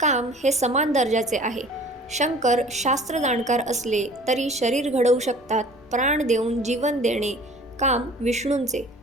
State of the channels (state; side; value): noise; left; rumble, 29 dB below the sound